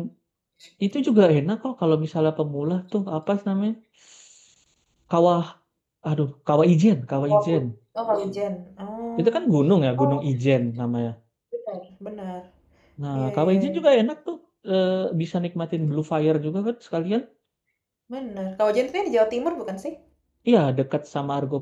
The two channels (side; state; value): both; identical; correlation 1.00